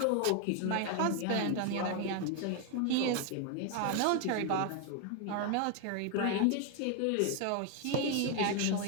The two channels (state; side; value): different; both; correlation 0.01